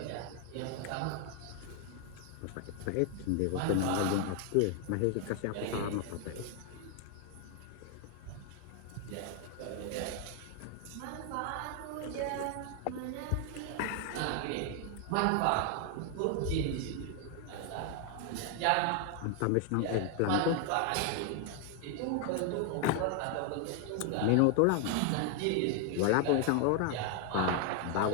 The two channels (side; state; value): both; different; correlation 0.00